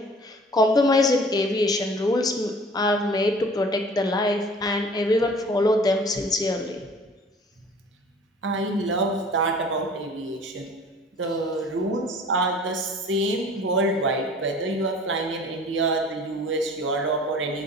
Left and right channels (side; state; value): both; normal; correlation 0.48